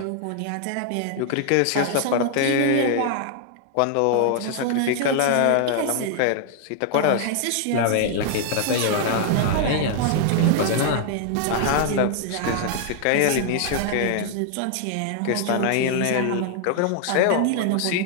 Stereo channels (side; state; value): both; different; correlation 0.00